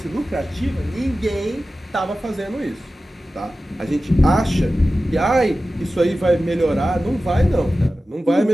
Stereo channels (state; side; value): normal; both; correlation 0.95